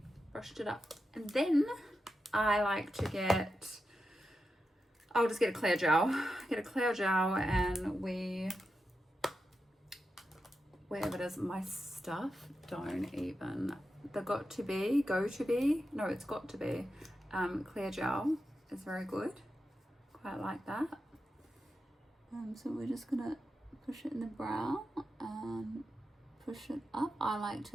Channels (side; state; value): both; normal; correlation 0.89